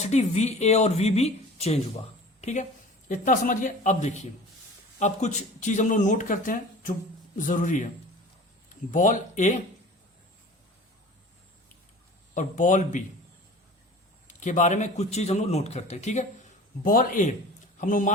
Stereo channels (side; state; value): both; normal; correlation 0.40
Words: वी ए और वी बी चेंज हुआ। ठीक है, इतना समझिए। अब देखिए, अब कुछ चीज हम लोग नोट करते हैं जो जरूरी है। बॉल ए और बॉल बी के बारे में कुछ चीज हम लोग नोट करते हैं। ठीक है, बॉल ए हम लोग